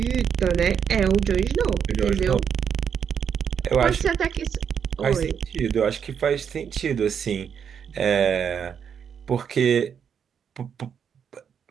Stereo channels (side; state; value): left; quieter; 7.5 dB